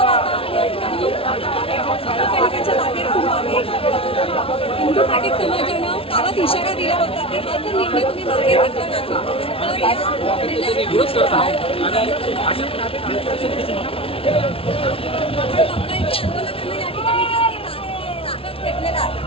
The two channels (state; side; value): late; right; 0.26 ms